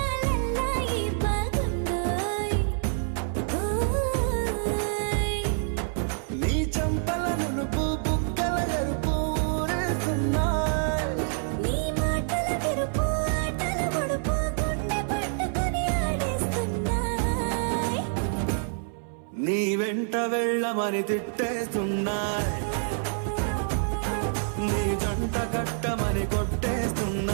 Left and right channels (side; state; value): left; silent; 60 dB below the other